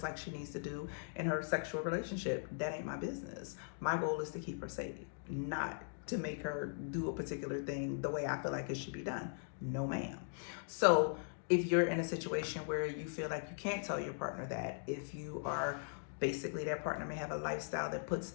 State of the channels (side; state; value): right; silent; digital silence